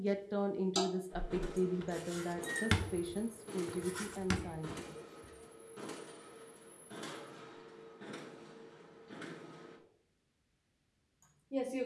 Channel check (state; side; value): identical; both; correlation 1.00